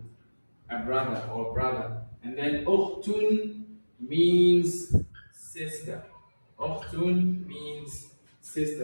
a brother or brother. And then ukhtun means sister. Ukhtun means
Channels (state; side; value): inverted; both; correlation -1.00